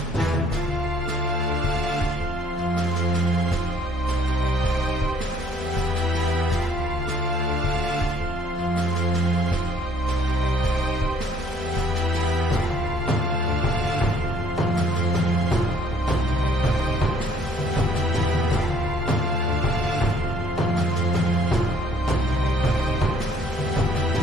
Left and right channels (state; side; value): normal; both; correlation 0.61